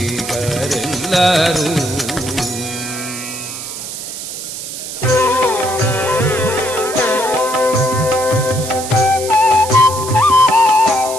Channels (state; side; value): noise; right; hiss, 8 dB below the sound